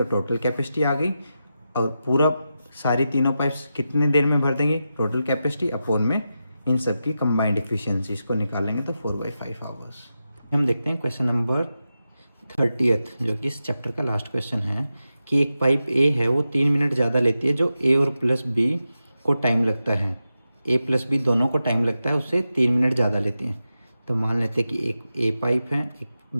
टोटल कैपेसिटी आ गई। और पूरा सारी तीनों पाइप्स कितने देर में भर देंगे, टोटल कैपेसिटी अपोन में इन सब की कंबाइंड इफ़िशियंसी, इसको निकालेंगे तो 4/5 आवर्स। हम देखते हैं क्वेश्चन नंबर 30th, जो कि इस चैप्टर का लास्ट क्वेश्चन है, कि एक पाइप ए है वो 3 मिनट ज़्यादा लेती है जो ए और प्लस बी को टाइम लगता है, ए प्लस बी दोनों को टाइम लगता है, उससे 3 मिनट ज़्यादा लेती है। तो मान लेते हैं कि एक ए पाइप है, एक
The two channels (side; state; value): both; inverted; correlation -0.90